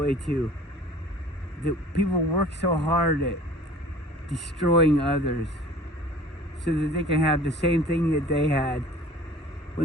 too. That people work so hard at destroying others so that they can have the same thing that they had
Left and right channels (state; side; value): normal; both; correlation 0.47